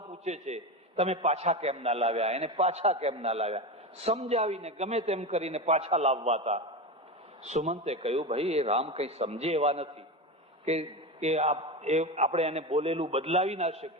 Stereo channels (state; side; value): normal; both; correlation 0.21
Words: પૂછે છે તમે પાછા કેમ ના લાવ્યા, એને પાછા કેમ ના લાવ્યા. સમજાવીને ગમે તેમ કરીને પાછા લાવવાતા. સુમંતે કહ્યું, ભાઈ એ રામ કઈ સમજે એવા નથી કે આપણે એને બોલેલું બદલાવી ના